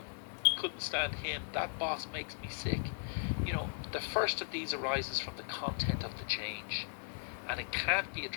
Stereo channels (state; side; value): silent; right; digital silence